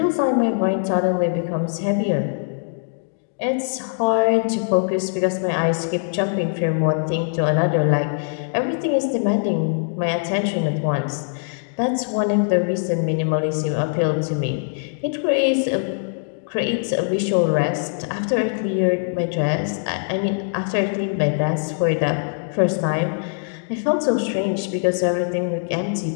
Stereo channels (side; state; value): right; silent; digital silence